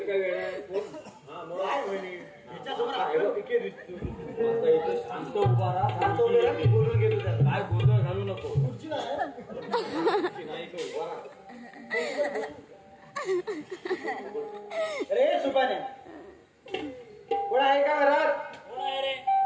काय वेळ आहे? हा, मग काय म्हणे हिच्यासमोर आपल्याला पिके दिसतो. आता इथं शांत उभा राहा. शांत उभे राहा, मी बोलून घेतो त्याला. काय गोंधळ घालू नको. खुर्ची नाही आहे. नाही इथं उभा राहा. अरे सुपाने कोण आहे का घरात? कोण आहे रे?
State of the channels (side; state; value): both; identical; correlation 1.00